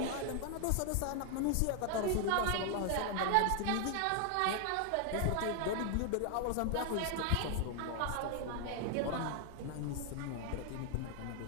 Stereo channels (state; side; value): different; both; correlation 0.00